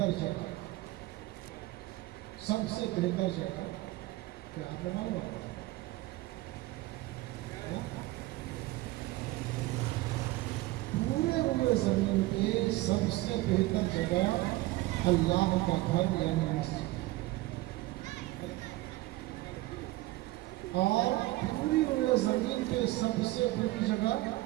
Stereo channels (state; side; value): quieter; left; 18.7 dB